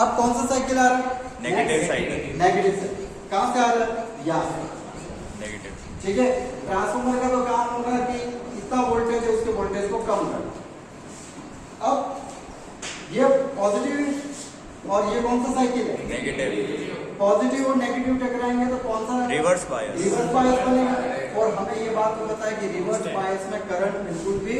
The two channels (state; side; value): identical; both; correlation 1.00